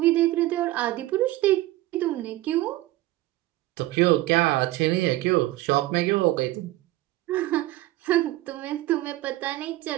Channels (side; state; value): left; quieter; 17.2 dB